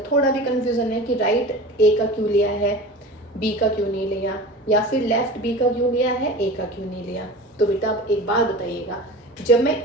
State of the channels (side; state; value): both; normal; correlation 0.35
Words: थोड़ा भी कंफ्यूजन है कि राइट ए का क्यों लिया है, बी का क्यों नहीं लिया, या फिर लेफ्ट बी का क्यों लिया है, ए का क्यों नहीं लिया, तो बेटा आप एक बात बताइएगा, जब मैं